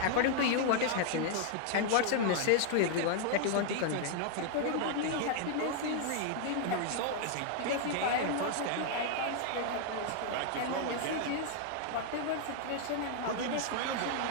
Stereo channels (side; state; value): both; different; correlation 0.00